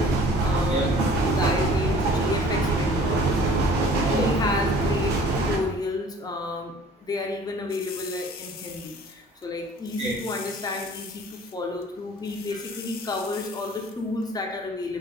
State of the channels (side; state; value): both; normal; correlation 0.50